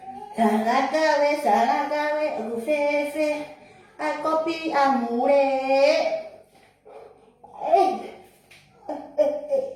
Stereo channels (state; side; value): identical; both; correlation 1.00